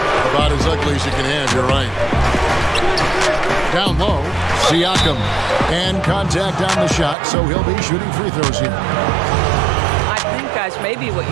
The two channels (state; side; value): drops out; left; at 7.2 s